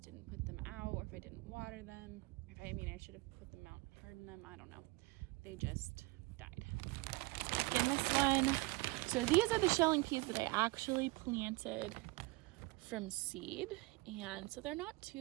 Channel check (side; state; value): left; quieter; 23.5 dB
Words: didn't put them out or if I didn't water them. I should have put them out, hardened them. I don't know. They just died. Again, this one. So these are the shelling peas that I actually planted from seed, and so they're not